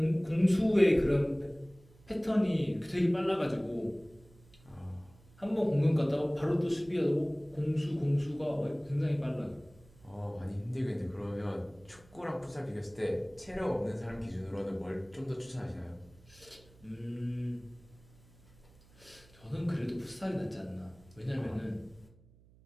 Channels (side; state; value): right; noise; hum, 26 dB below the sound